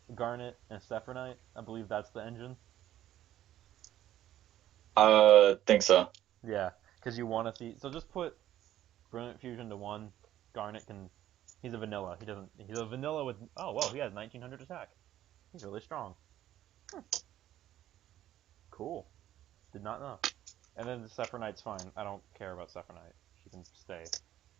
Garnet, and Sephronite. I believe that's the engine. Think so. Yeah, because you want to see. So just put Brilliant Fusion to one. Garnet can. He's a vanilla. He doesn't. He's a vanilla with. Oh well, he has 1900 attack. He's really strong. Cool. Did not know. And then the Sephronite's fine. I don't care about Sephronite. She can stay.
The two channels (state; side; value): quieter; left; 12.7 dB